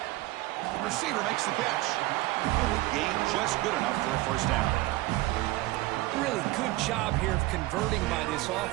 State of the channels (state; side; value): quieter; left; 18.8 dB